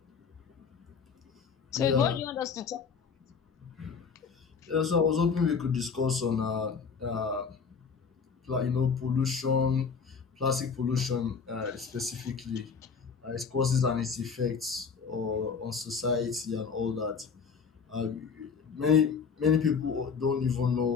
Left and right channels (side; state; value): right; quieter; 5.8 dB